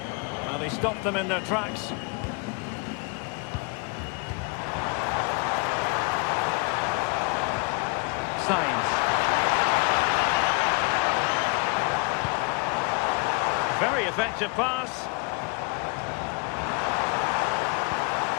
And But he stopped them in their tracks. Sainz. Very effective pass.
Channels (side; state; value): right; quieter; 31.7 dB